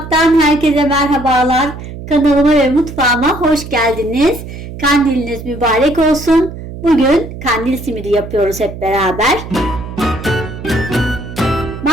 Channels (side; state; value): right; noise; hum, 11 dB below the sound